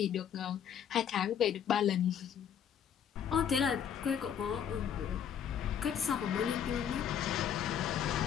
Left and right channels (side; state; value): right; quieter; 8.6 dB